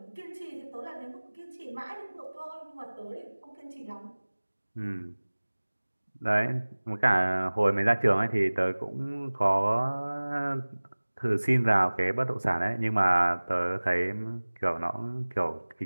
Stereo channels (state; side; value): inverted; both; correlation -1.00